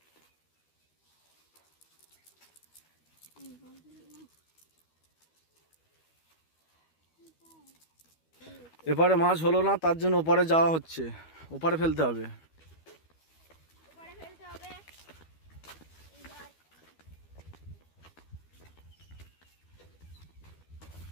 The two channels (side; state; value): right; late; 12 ms